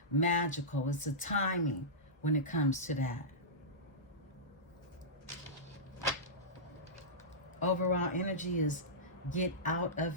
magical. It's a timing when it comes to that. Overall energy is get out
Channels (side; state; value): both; normal; correlation -0.15